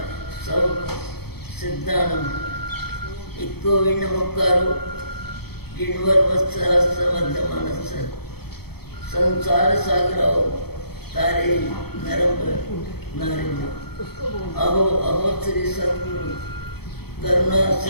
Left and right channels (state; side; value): late; right; 0.96 ms